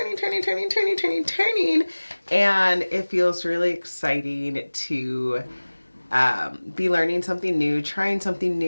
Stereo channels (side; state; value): both; inverted; correlation -1.00